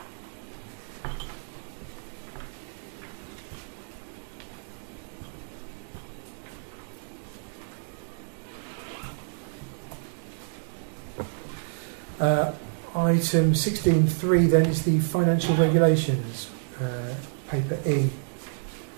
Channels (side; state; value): left; silent; digital silence